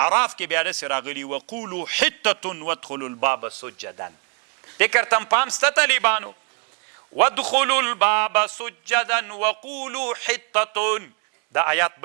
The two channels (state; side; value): quieter; left; 34.9 dB